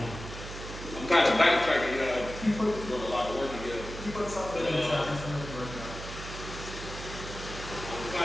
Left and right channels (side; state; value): right; noise; hum, 10 dB below the sound